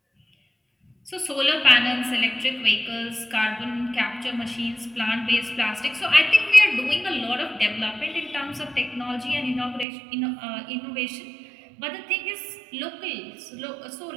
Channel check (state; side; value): drops out; left; at 9.9 s